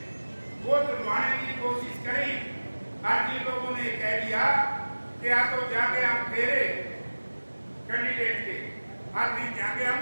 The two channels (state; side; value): inverted; both; correlation -1.00